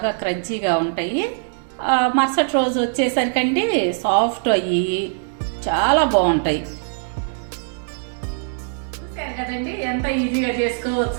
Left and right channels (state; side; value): silent; left; digital silence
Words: క్రంచీగా ఉంటాయి, మరుసటి రోజు వచ్చేసరికండి సాఫ్ట్ అయ్యి చాలా బాగుంటాయి. చూసారు కదండి ఎంత ఈజీగా